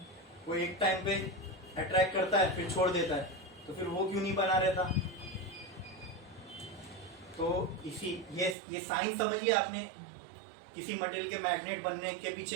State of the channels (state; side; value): drops out; left; at 8.6 s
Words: वो एक टाइम पे अट्रैक्ट करता है फिर छोड़ देता है, तो फिर वो क्यों नहीं बना रहता। तो इसी ये साइंस समझ लिया आपने किसी मटेरियल के मैग्नेट बनने के